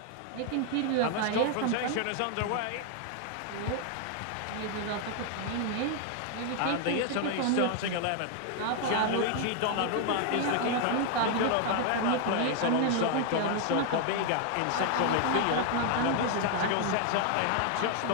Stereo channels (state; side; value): different; both; correlation 0.00